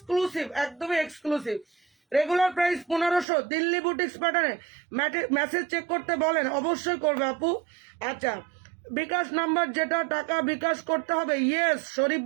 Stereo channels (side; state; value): left; drops out; at 3.2 s